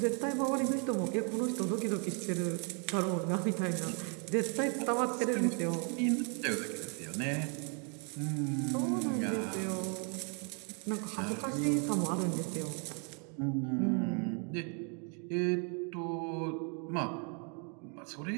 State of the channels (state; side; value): quieter; left; 38.4 dB